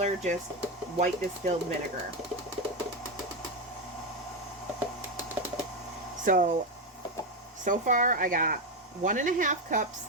just white distilled vinegar. So far I got 1.5 cups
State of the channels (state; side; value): normal; both; correlation 0.09